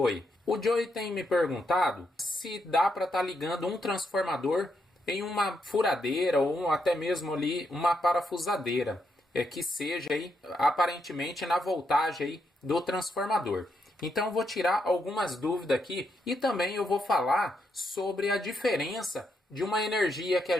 O Joey tem me perguntado se dá para estar ligando um transformador em uma furadeira ou até mesmo ali uma parafusadeira, que seja aí aparentemente na voltagem aí do transformador. Então eu vou tirar algumas dúvidas aqui e também eu vou falar sobre a diferença de uma energia que a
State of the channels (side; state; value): both; normal; correlation 0.79